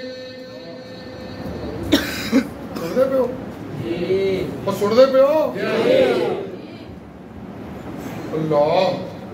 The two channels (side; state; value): both; identical; correlation 1.00